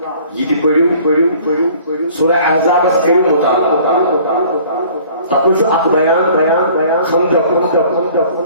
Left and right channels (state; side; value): inverted; both; correlation -0.52